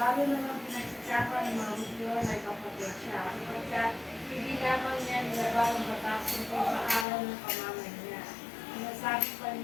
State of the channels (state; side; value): drops out; right; at 7.1 s